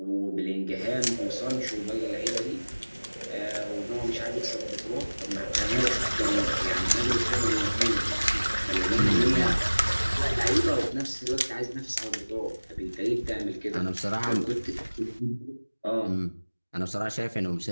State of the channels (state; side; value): inverted; both; correlation -1.00